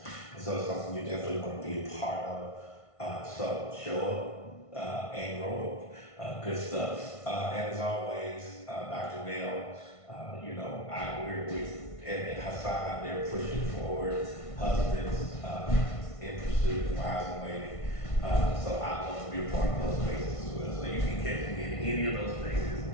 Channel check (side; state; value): right; late; 1.5 ms